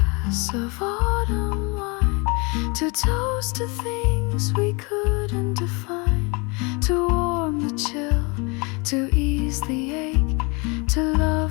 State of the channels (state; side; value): quieter; right; 29.6 dB